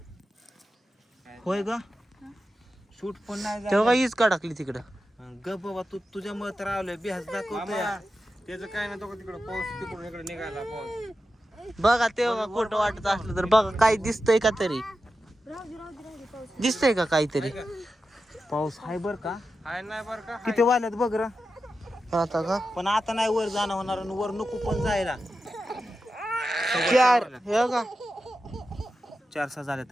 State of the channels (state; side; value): normal; both; correlation 0.91